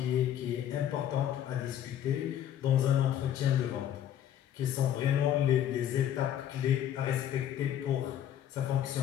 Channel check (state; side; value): quieter; right; 10.6 dB